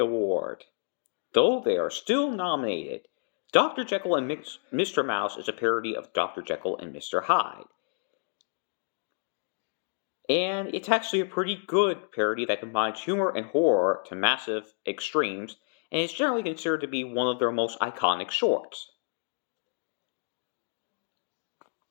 though they are still nominated. Dr. Jekyll and Mr. Mouse is a parody of Dr. Jekyll and Mr. Hyde. And it's actually a pretty good parody that combines humor and horror to massive extremes, and is generally considered to be one of their most iconic shorts.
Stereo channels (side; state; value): right; silent; digital silence